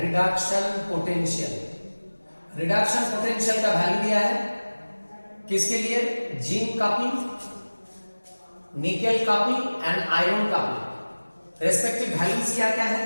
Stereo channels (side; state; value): both; inverted; correlation -1.00